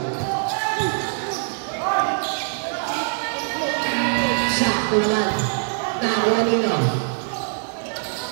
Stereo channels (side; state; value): left; silent; 58 dB below the other